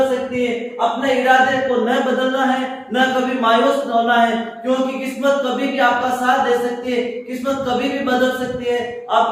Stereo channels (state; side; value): identical; both; correlation 1.00